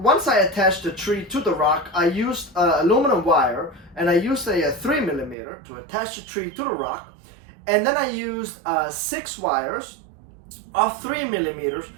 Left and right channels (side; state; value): left; drops out; at 5.4 s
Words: I attached the tree to the rock, I used aluminum wire, and I used a 3mm to attach the tree to the rock, and then I used 6 wires of 3mm